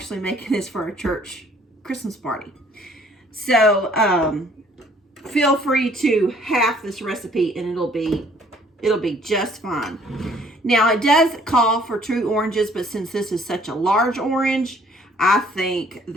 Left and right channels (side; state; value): both; normal; correlation 0.59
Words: making this for a church Christmas party. So feel free to half this recipe, and it'll be just fine. Now it does call for 2 oranges, but since this is such a large orange, I think